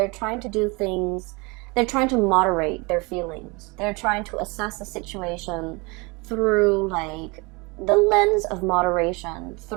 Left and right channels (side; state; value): left; quieter; 27.5 dB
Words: trying to do things, they're trying to moderate their feelings. They're trying to assess the situation through like the lens of moderation,